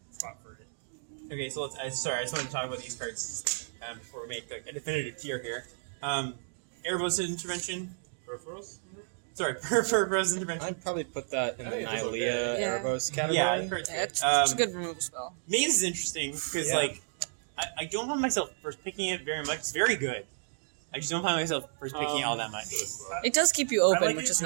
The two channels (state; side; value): silent; left; digital silence